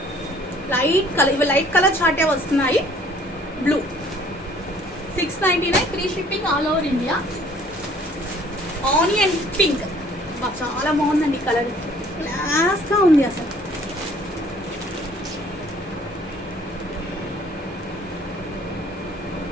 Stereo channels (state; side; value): normal; both; correlation 0.56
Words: లైట్ కలర్. ఇవి లైట్ కలర్ చార్టే వస్తున్నాయి. Blue 699 free shipping all over India. Onion pink, చాలా బాగుందండి కలర్, క్లాస్గా ఉంది అసలు.